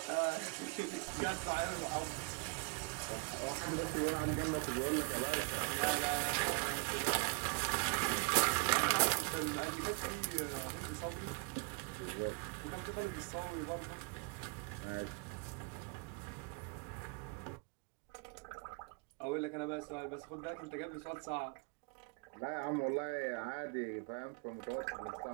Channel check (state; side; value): quieter; left; 32.2 dB